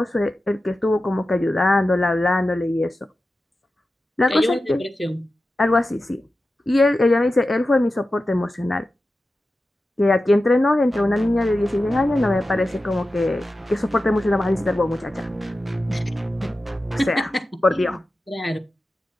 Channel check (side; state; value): both; normal; correlation 0.93